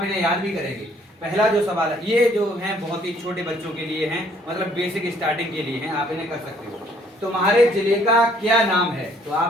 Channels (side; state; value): both; normal; correlation 0.62